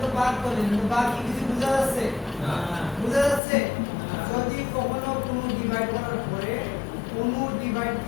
তো বাদ করলেন কিন্তু বাকি কিছু বোঝা যাচ্ছে না বোঝা যাচ্ছে যদি কখনো কোনো ডিভাইড করার পরে কোনো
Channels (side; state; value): right; drops out; at 3.4 s